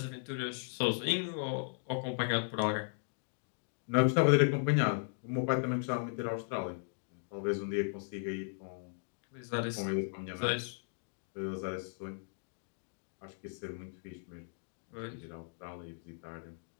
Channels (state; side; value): silent; right; digital silence